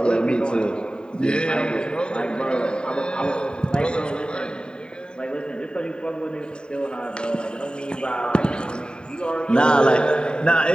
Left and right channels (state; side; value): late; right; 0.048 ms